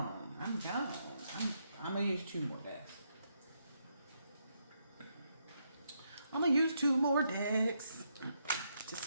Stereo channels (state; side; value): inverted; both; correlation -0.78